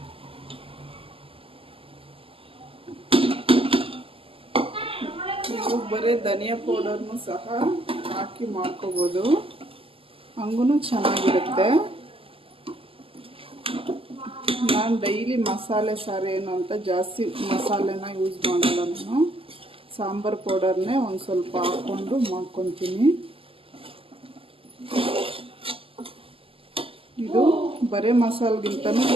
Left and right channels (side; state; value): left; late; 0.26 ms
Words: ನೀವು ಬರೀ ಧನಿಯಾ ಪೌಡರ್ನು ಸಹ ಹಾಕಿ ಮಾಡ್ಕೋಬೋದು, ಹಂಗೂ ಚೆನ್ನಾಗಿರುತ್ತೆ. ನಾನು ಡೈಲಿ ಮಸಾಲೆ ಸಾರು ಏನು ಅಂತ ಜಾಸ್ತಿ ಮಸಾಲೆನ ಯೂಸ್ ಮಾಡಲ್ಲ. ನಾನು ಸಾಂಬಾರು ಪೌಡರ್ನೇ ಒಂದು ಸ್ವಲ್ಪ ಹಾಕ್ಕೊಂಡು ಮಾಡ್ಕೊತೀನಿ. ಇದು ಬರೀ ಮಸಾಲೆಗಿಂತನೂ